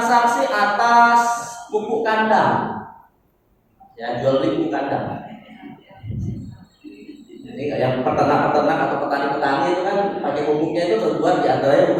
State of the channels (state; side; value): identical; both; correlation 1.00